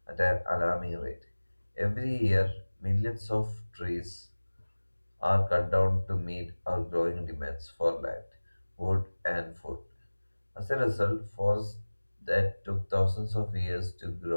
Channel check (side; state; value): both; inverted; correlation -1.00